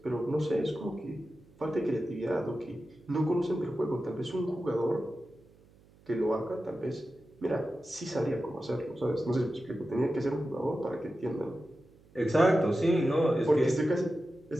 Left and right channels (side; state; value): right; noise; hum, 27 dB below the sound